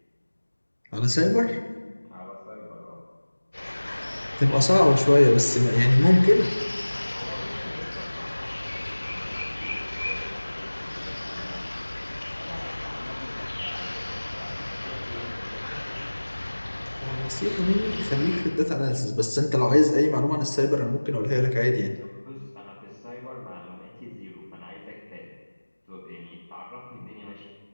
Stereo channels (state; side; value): inverted; both; correlation -1.00